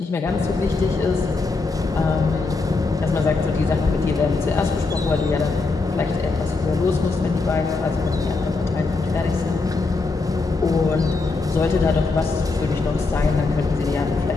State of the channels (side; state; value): right; quieter; 3.8 dB